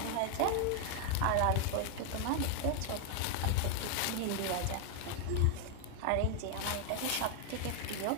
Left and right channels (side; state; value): both; different; correlation 0.00